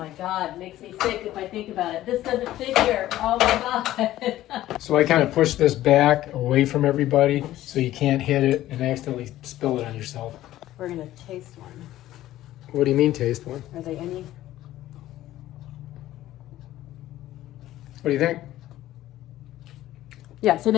God, makes me sick if I think about it. This doesn't fit here. Oh my God. So I kind of push this back away from everybody so you can't hit it and accidentally spill it on yourself. We're going to taste one. What do you mean taste one? Are they any? What do you think? Yeah, so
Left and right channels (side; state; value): right; quieter; 14.4 dB